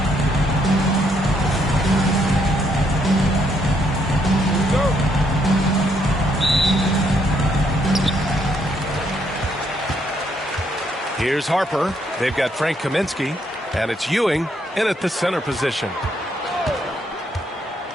Here's Harper. They've got Frank Kaminsky, and it's Ewing in at the center position.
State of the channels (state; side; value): normal; both; correlation 0.72